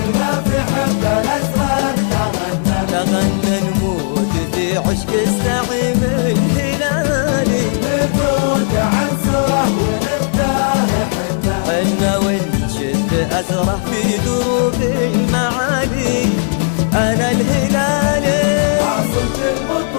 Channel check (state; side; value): silent; right; 67 dB below the other